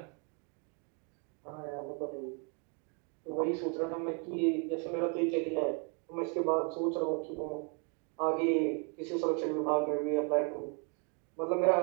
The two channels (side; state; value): left; quieter; 36.8 dB